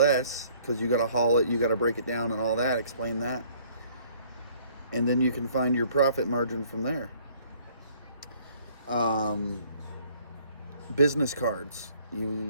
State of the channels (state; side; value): inverted; both; correlation -0.60